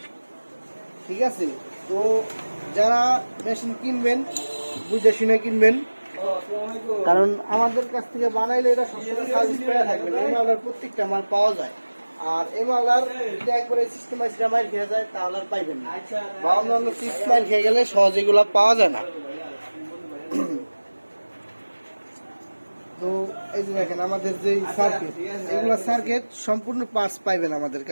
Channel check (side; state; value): both; inverted; correlation -1.00